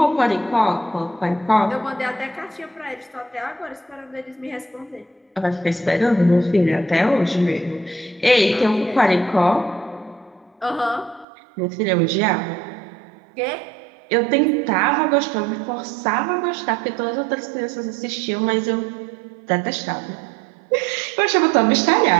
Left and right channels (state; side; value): drops out; left; at 11.2 s